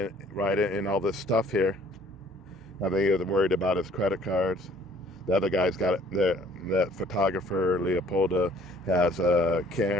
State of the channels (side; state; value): both; normal; correlation 0.57